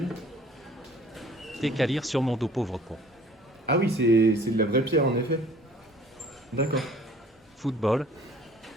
T'es qu'à lire sur mon dos, pauvre con. Ah oui, c'est de la vraie pierre en effet. D'accord. Football,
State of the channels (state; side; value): normal; both; correlation 0.52